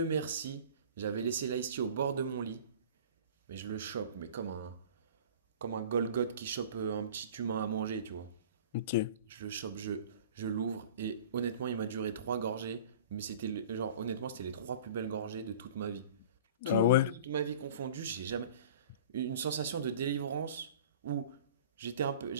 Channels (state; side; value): inverted; both; correlation -0.42